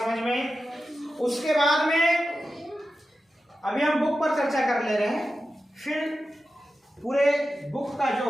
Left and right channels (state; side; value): normal; both; correlation 0.92